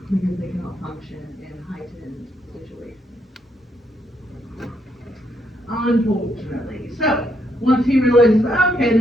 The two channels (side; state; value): both; normal; correlation 0.76